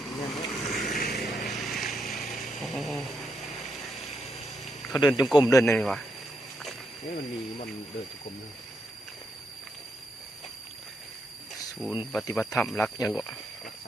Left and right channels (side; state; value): both; normal; correlation 0.81